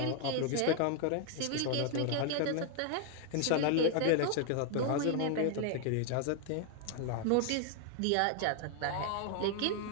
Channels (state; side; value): different; both; correlation 0.00